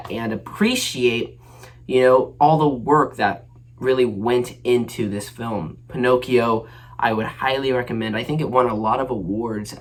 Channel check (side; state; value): both; identical; correlation 1.00